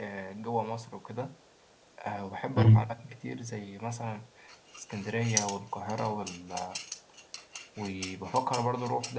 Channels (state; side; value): identical; both; correlation 1.00